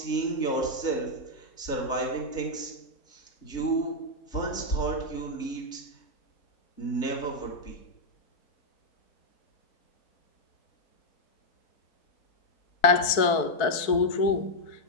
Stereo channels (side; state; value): right; late; 4.6 ms